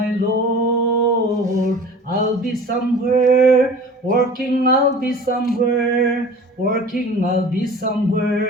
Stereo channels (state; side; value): normal; both; correlation 0.42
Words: Lord. I'll be somewhere working, I'll be somewhere working, I'll be